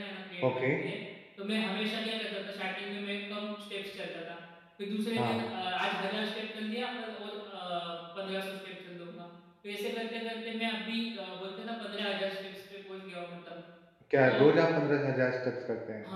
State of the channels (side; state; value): both; identical; correlation 1.00